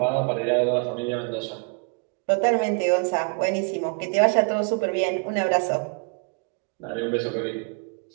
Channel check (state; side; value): quieter; left; 37.8 dB